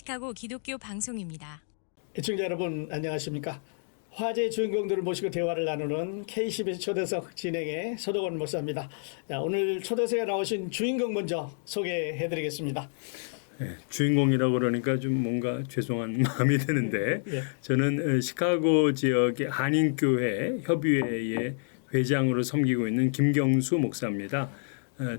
기독교 방송입니다. 시청자 여러분 안녕하십니까? 화제의 주인공들을 모시고 대화를 나누는 KCBS 초대석 진행의 서덕원 목사입니다. 자, 오늘 초대석에 나오신 주인공 먼저 소개해드리겠습니다. 네, 주인공이라고 그러니까 좀 뭔가 죄송한 마음이 드는데 예. 저는 시카고 지역의 한인교회 협의회의 회장으로 섬기고 있는 김경수 목사입니다.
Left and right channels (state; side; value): silent; right; digital silence